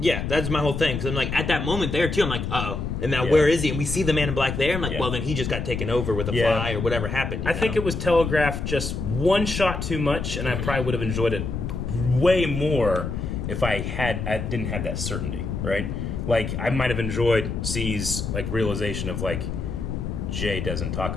That's my whole thing. Because I'm like, at that moment there, too, I'm like, uh-oh. And now Yeah. where is he? And we see the man in black there. I'm like, Yeah. well, then he just got taken over with a Yeah. fly or whatever happened. I think it was telegraphed just one shot too much, and I probably would have enjoyed it way more if I didn't have that certainty, right? Like, I might have enjoyed C's like realization of like Jay doesn't talk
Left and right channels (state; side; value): noise; left; rumble, 4 dB below the sound